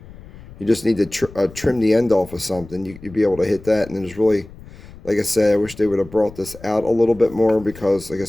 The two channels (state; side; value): noise; left; rumble, 19 dB below the sound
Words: you just need to trim the end off of something, you'd be able to hit that. And there's really, like I said, I wish they would have brought this out a little bit more, because like I